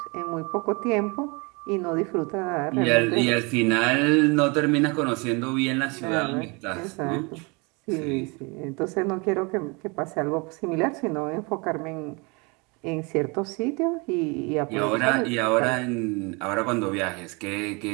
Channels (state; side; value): quieter; left; 29.2 dB